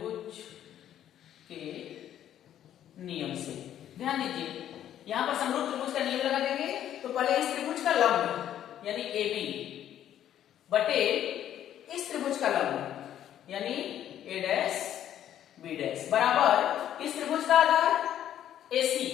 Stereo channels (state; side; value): quieter; right; 11.0 dB